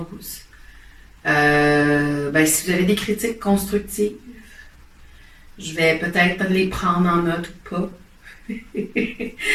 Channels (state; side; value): identical; both; correlation 1.00